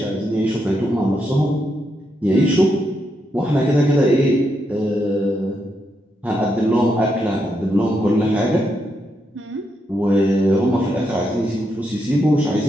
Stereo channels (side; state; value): both; normal; correlation 0.81